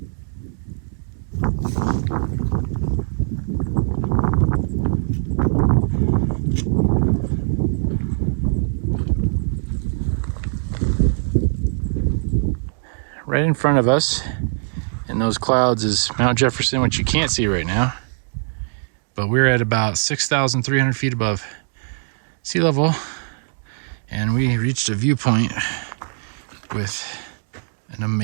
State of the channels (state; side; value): silent; left; digital silence